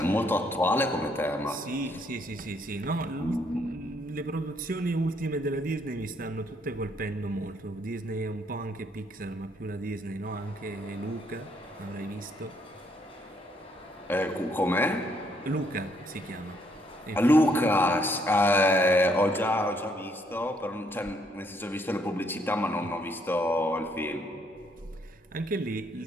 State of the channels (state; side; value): normal; both; correlation 0.70